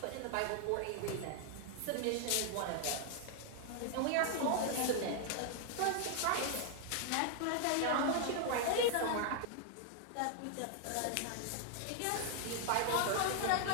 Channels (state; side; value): different; both; correlation 0.00